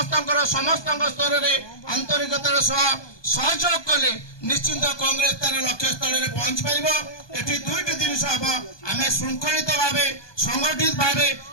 स्तर में आंतरिकतार सहयोग कले निश्चिंत कांग्रेस तार लक्ष्य स्थल में पहुंच पार। एटी दुईट जिन हम आम श्रृंखलित भाव संगठित भाव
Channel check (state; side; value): late; right; 1.2 ms